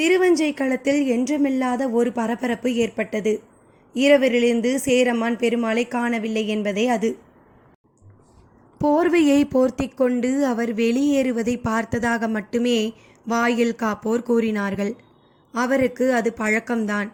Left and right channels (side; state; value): both; identical; correlation 1.00